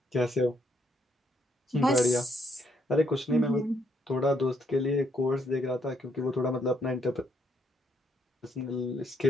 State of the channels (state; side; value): normal; both; correlation 0.72